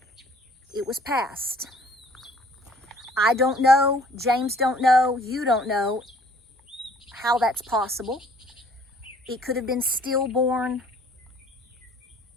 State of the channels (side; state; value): both; normal; correlation 0.56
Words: It was passed. I don't know, James don't know, you don't know how that's possible. It could have been stillborn